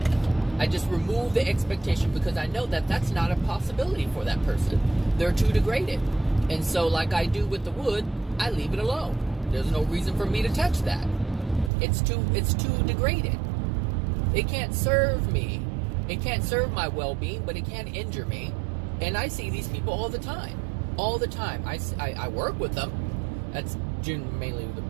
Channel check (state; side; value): drops out; left; at 11.7 s